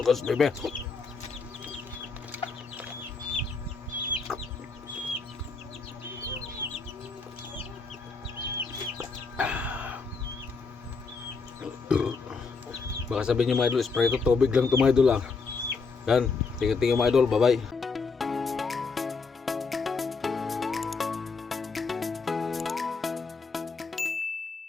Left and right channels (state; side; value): quieter; right; 4.6 dB